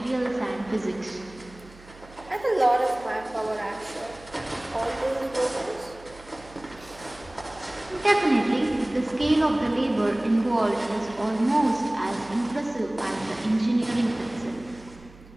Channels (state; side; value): noise; right; hum, 22 dB below the sound